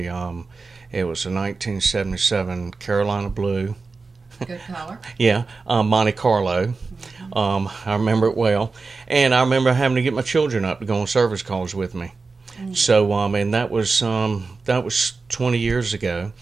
was a 1977 Carolina Blue. Good color. Yeah, Monte Carlo. I remember it well, and I remember having to get my children up to go on service calls with me. So, and that was 20 years ago,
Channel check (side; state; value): left; quieter; 4.2 dB